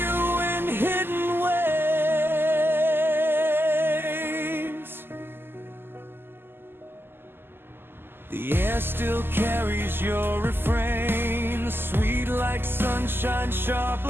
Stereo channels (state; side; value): late; left; 0.10 ms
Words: you in hidden ways. The air still carries your refrain, sweet like sunshine, sharp